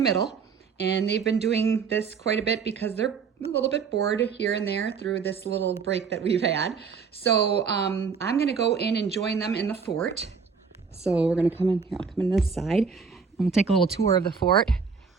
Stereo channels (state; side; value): quieter; left; 5.7 dB